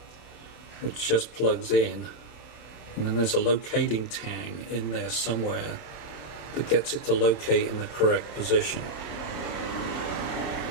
which just plugs in, and then there's a locating tang in there somewhere that gets it to locate in the correct position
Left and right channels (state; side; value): late; right; 27 ms